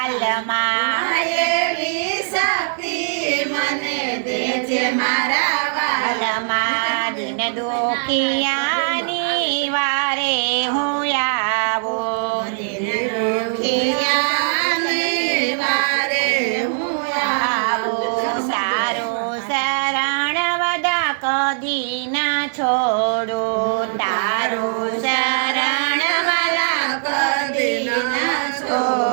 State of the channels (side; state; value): left; silent; digital silence